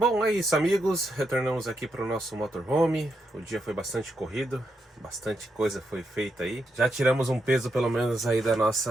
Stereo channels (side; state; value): both; normal; correlation 0.82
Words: é isso, amigos. Retornamos aqui para o nosso motorhome. O dia foi bastante corrido, bastante coisa foi feita aí. Já tiramos um peso pelo menos aí da